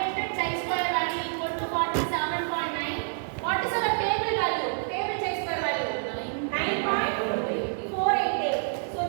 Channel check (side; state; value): left; silent; digital silence